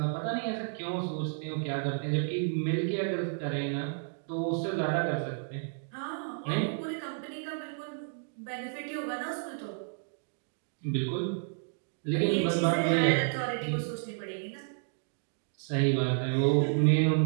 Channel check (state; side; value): silent; left; digital silence